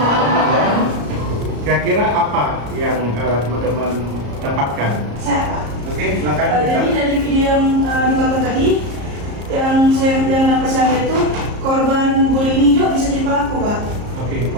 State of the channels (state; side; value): late; left; 34 ms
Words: Kira-kira apa yang teman-teman dapatkan? Saya Pak. Oke, silakan. Jadi dari video yang ditonton tadi, yang dapat saya lihat itu korban bullying ini juga bisa jadi pelaku Pak. Oke,